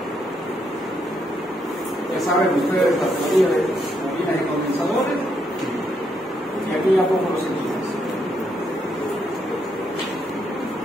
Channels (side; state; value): both; normal; correlation 0.76